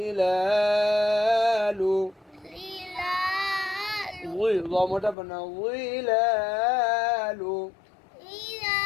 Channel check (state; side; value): drops out; right; at 5.2 s